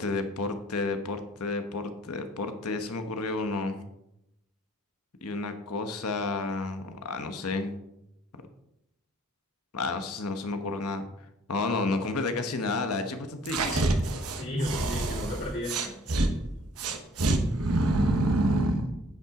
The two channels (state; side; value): normal; both; correlation 0.55